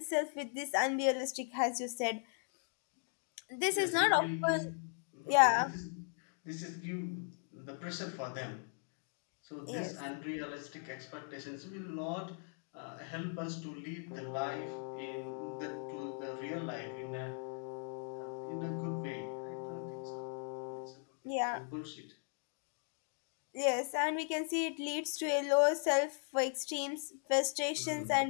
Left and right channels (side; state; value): right; silent; 52 dB below the other